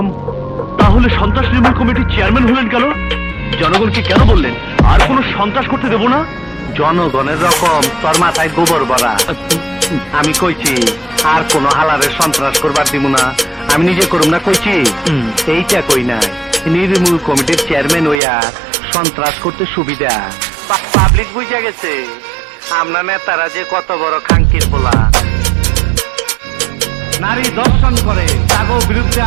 তাহলে সন্ত্রাস নির্মূল কমিটির চেয়ারম্যান হলেন কেন? জনগণকে কেন বললেন আর কোনো সন্ত্রাস করতে দেব না? জনগণের রকম তোর মাথায় গোবর ভরা। আমি কইছি আর কোন হালারে সন্ত্রাস করবার দিব না, আমি নিজে করুম না কইছি। এইটা কই নাই, নির্মূল কমিটির চেয়ারম্যান হইয়া সন্ত্রাস করতে সুবিধা। পাবলিক বুঝা গেছে আমরা নেতারা যে কত বড় খাঙ্কির বলা। নারী দর্শন করে তাগো বিরুদ্ধে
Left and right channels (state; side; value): drops out; left; at 18.2 s